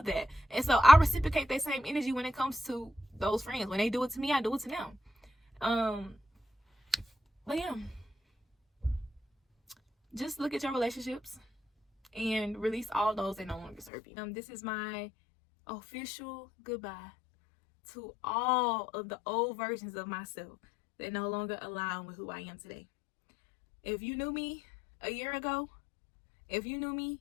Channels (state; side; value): drops out; right; at 13.9 s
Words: that. And so I reciprocate that same energy when it comes to those friends. When they do it to me, I do it to them. But yeah, just look at your relationships and release all those that no longer serve you. This is my official goodbye to all of the old versions of myself that no longer align with who I am today. If you knew me a year ago, if you knew me